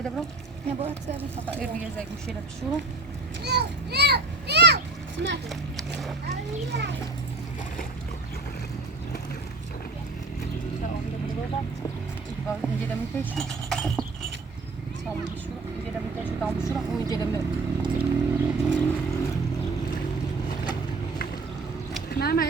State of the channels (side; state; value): left; quieter; 3.5 dB